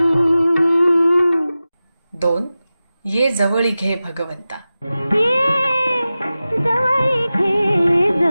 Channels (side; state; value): both; inverted; correlation -0.95